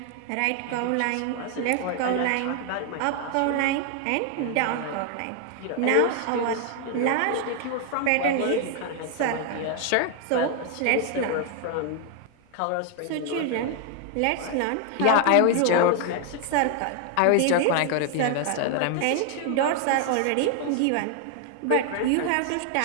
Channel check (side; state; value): both; different; correlation 0.00